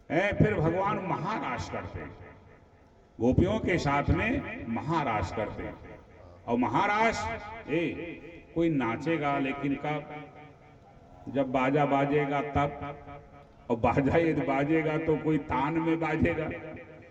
फिर भगवान महाराज करते हैं, गोपियों के साथ में महाराज करते। और महाराज कोई नाचेगा लेकिन कब? जब बाजा बाजेगा तब। और बाजा यदि बाजेगा तो कोई तान में बाजेगा।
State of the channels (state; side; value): identical; both; correlation 1.00